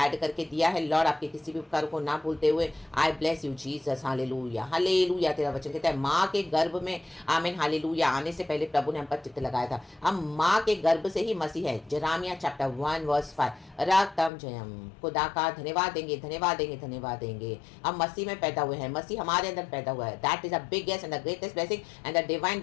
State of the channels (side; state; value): right; drops out; at 14.3 s